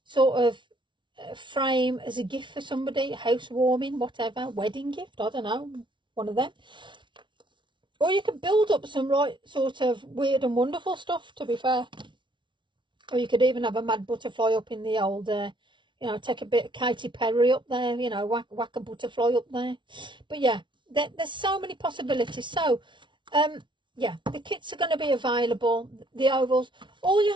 sort of frame as a gift for somebody, housewarming, whatever, wedding gift, I don't know, one of them. Or you could build up some right sort of weird and wonderful stuff, to be fair. Or you could even have a mad butterfly up in the old, you know, take a bit of Katy Perry up there, you know, whack a butterfly up there. But yeah, there's so many possibilities. So, yeah, the kits are going to be available, the ovals. All you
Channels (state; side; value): late; left; 0.24 ms